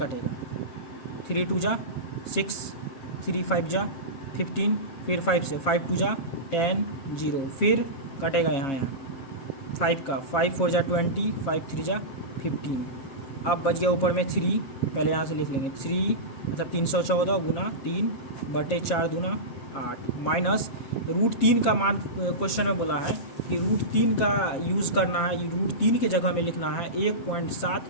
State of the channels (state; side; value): late; right; 7.4 ms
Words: 3 2 जा 6, 3 5 जा 15, फिर 5 से 5 2 जा 10 0, फिर कटेगा यहाँ 5 का, 5 4 जा 20, 5 3 जा 15। अब बच गया ऊपर में 3, पहले यहाँ से लिख लेंगे 3 मतलब 314 गुना 3/4 दूना 8 माइनस √3 का मान क्वेश्चन में बोला है कि √3 का यूज़ करना है। √3 के जगह में लिखना है